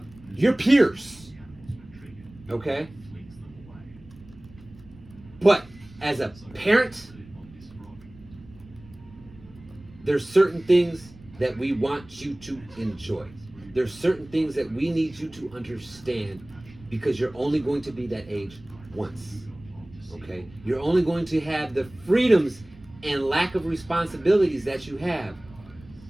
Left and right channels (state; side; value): noise; right; rumble, 22 dB below the sound